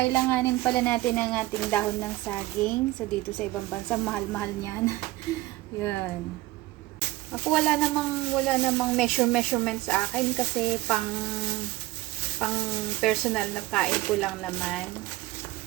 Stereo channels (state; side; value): quieter; left; 18.4 dB